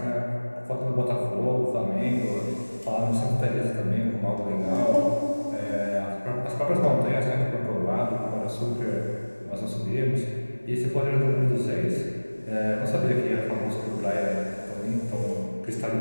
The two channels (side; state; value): both; inverted; correlation -1.00